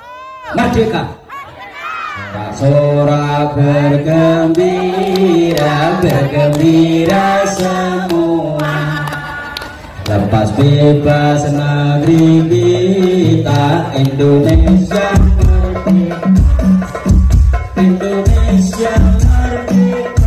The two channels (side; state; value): both; identical; correlation 1.00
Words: Merdeka. Sorak bergembira, bergembira semua. Lepas bebas negeri kita Indonesia merdeka. Indonesia